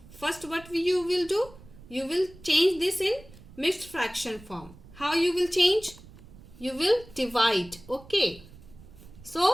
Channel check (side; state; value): right; noise; rumble, 20 dB below the sound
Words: first what you will do? You will change this in mixed fraction form. How you will change? You will divide. Okay.